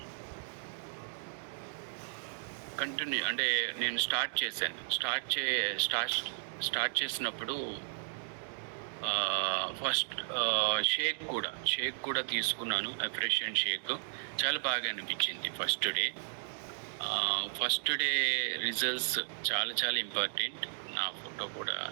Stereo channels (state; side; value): silent; left; digital silence